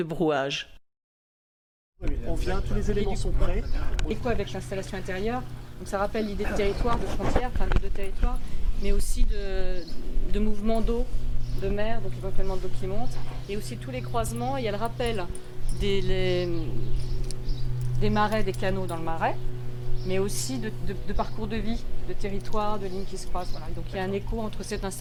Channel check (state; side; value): identical; both; correlation 1.00